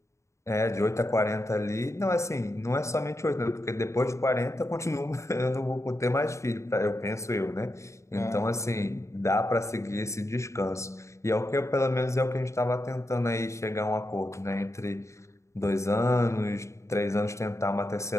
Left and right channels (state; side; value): late; right; 0.14 ms